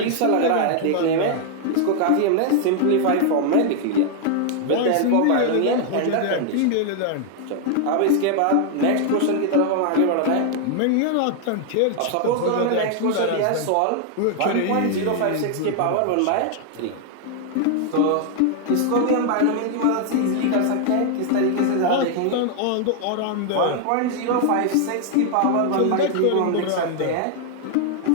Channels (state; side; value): different; both; correlation 0.00